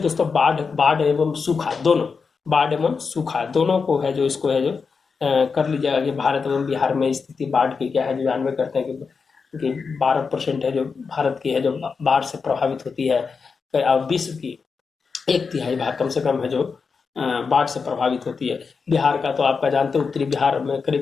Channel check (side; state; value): right; quieter; 5.2 dB